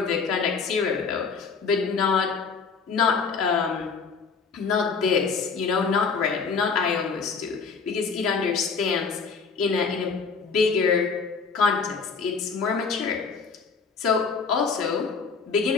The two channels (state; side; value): quieter; right; 5.2 dB